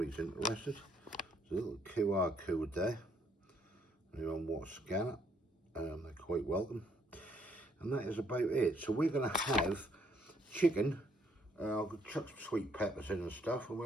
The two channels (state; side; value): normal; both; correlation 0.69